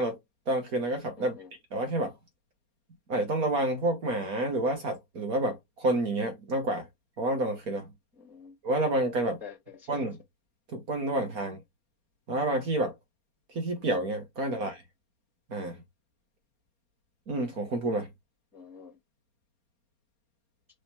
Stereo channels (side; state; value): left; late; 4.3 ms